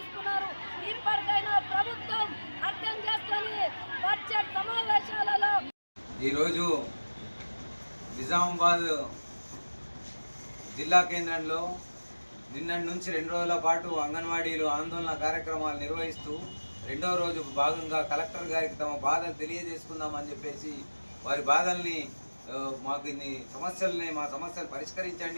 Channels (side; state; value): both; inverted; correlation -1.00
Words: ఇప్పటికైనా ప్రభుత్వం అర్థం చేసుకొని బడ్జెట్ సమావేశాలలో ఈరోజు నిజామాబాద్ జిల్లా కేంద్రంలో నిన్నటి నుంచి 2 రోజుల పాటు అంగన్వాడీలు ఆందోళన కార్యక్రమాలు నిర్వహిస్తూ 2వ రోజు భాగంగా కలెక్టర్ గారికి తమ బాధలు తెలియజేసుకుందామని చెప్పేసి వారి బాధల్ని మాకు మా సమస్యలు